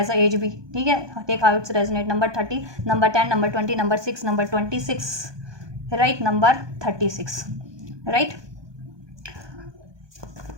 a age भी, ठीक है। Take how it's resonate, number 30, number 10, number 20, number 6, number 26, right, number 36, right.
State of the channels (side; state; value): left; late; 1.2 ms